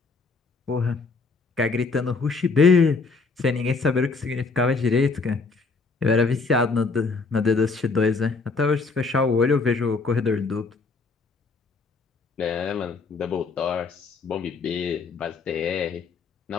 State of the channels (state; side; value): quieter; right; 4.2 dB